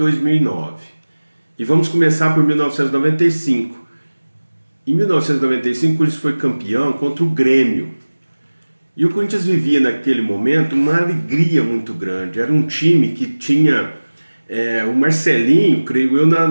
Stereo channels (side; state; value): both; inverted; correlation -1.00